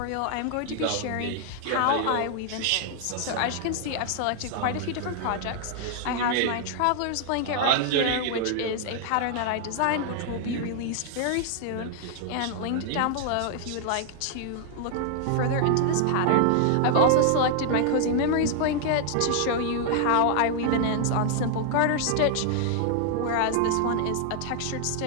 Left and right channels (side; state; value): both; different; correlation 0.00